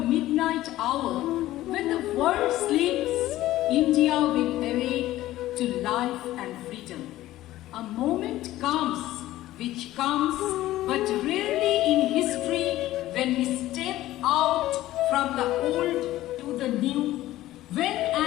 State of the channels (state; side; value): quieter; right; 15.3 dB